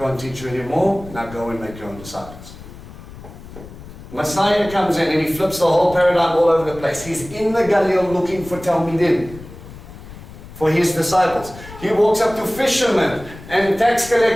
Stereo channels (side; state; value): left; noise; rumble, 16 dB below the sound